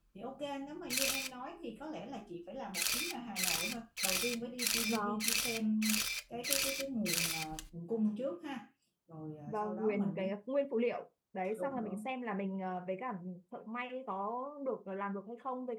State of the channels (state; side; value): identical; both; correlation 1.00